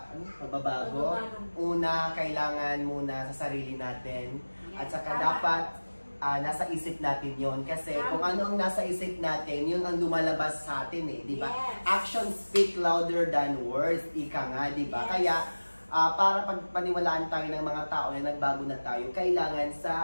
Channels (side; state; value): both; inverted; correlation -1.00